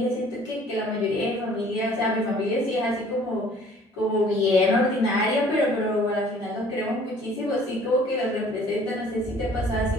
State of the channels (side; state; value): both; normal; correlation 0.54